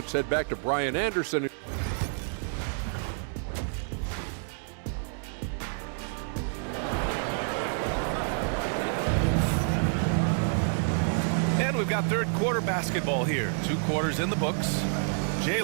head back to Brian Anderson. And we've got third quarter basketball here. 2 quarters in the books.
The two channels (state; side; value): silent; left; 59 dB below the other